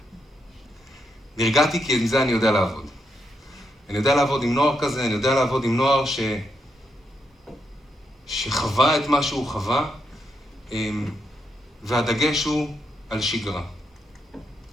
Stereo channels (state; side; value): normal; both; correlation 0.81